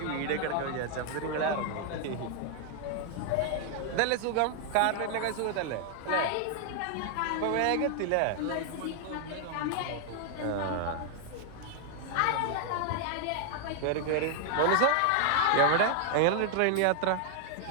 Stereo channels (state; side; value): different; both; correlation 0.00